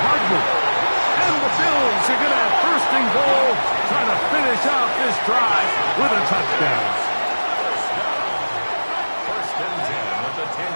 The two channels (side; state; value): both; inverted; correlation -1.00